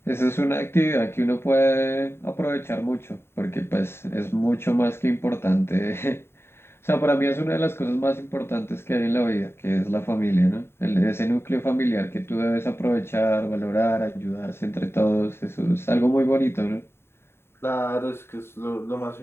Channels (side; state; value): right; late; 0.12 ms